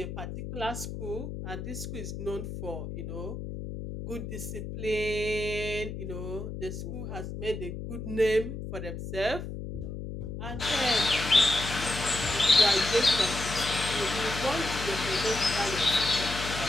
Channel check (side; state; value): left; noise; hum, 7 dB below the sound